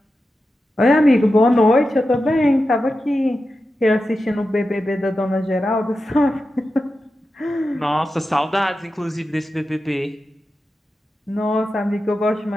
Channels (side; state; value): both; normal; correlation 0.91